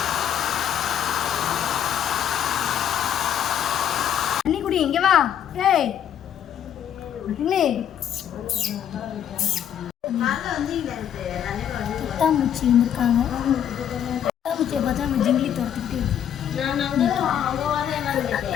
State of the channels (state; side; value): quieter; right; 9.6 dB